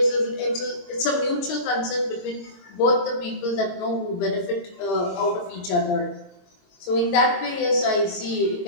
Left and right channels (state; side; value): late; right; 23 ms